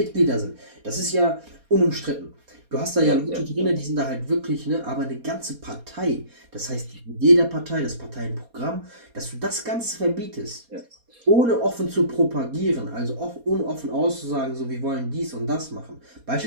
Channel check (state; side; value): late; left; 4.2 ms